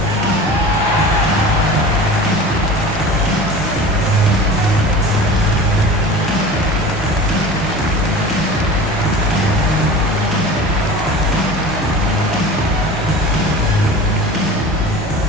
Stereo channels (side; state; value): both; normal; correlation 0.37